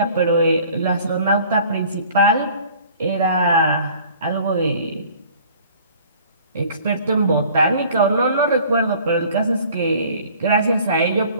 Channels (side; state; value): both; inverted; correlation -0.51